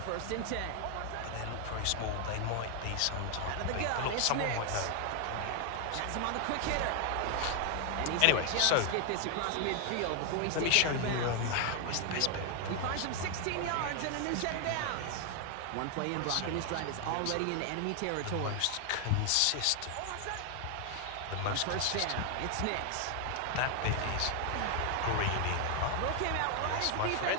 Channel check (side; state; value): both; different; correlation 0.00